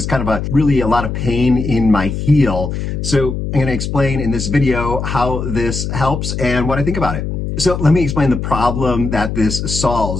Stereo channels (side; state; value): left; noise; hum, 4 dB below the sound